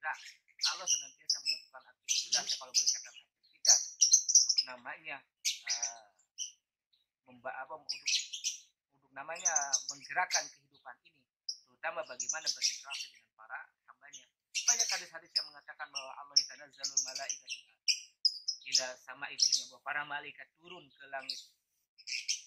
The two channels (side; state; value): both; identical; correlation 1.00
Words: Allah senantiasa melakukan aktivitas, kalau boleh kata aktivitas, untuk namanya untuk namanya menggerakkan kehidupan ini, terutama bagaimana berinteraksi dengan para hambanya. Banyak hadis-hadis yang mengatakan bahwa Allah tanazzalul malaikatu ila sama itunya, bahwa para malaikat turun ke langit